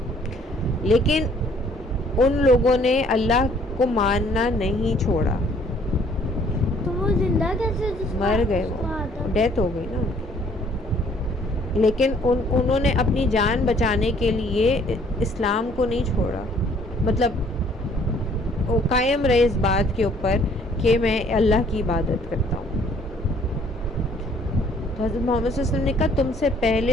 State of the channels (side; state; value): both; normal; correlation 0.60